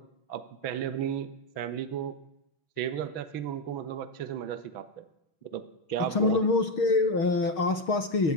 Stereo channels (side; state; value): right; late; 6.4 ms